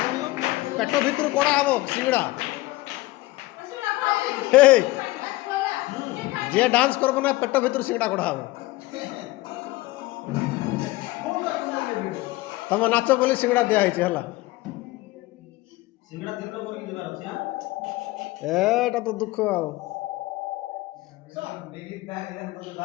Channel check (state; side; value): quieter; right; 19.5 dB